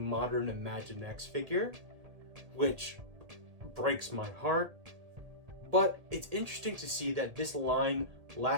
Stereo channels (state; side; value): late; left; 1.8 ms